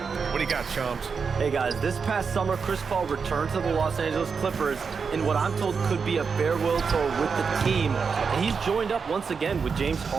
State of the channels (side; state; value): left; quieter; 5.5 dB